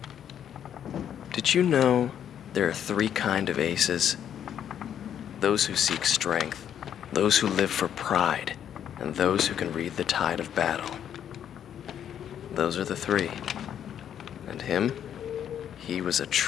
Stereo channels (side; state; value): right; quieter; 9.5 dB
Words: Did you know there are 3 kinds of aces? Those who seek strength, those who live for pride, and those who can read the tide of battle. Those are the 3. And him? He was a